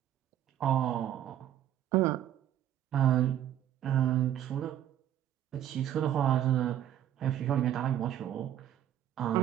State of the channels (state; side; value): quieter; left; 11.1 dB